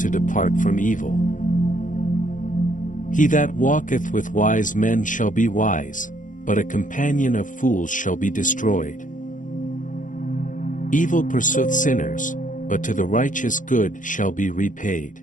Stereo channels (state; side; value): late; right; 0.38 ms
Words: depart from evil. He that walketh with wise men shall be wise, but a companion of fools shall be destroyed. Evil pursueth sinners, but to the righteous good shall be repaid.